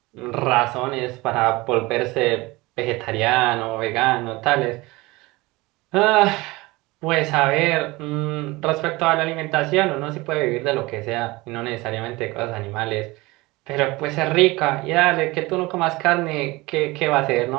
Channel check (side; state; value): left; quieter; 21.8 dB